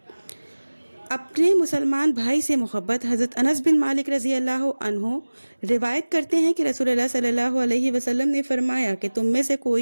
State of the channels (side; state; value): both; inverted; correlation -1.00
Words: اپنے مسلمان بھائی سے محبت۔ حضرت انس بن مالک رضی اللہ عنہ روایت کرتے ہیں کہ رسول اللہ صلی اللہ علیہ وسلم نے فرمایا کہ تم میں سے کوئی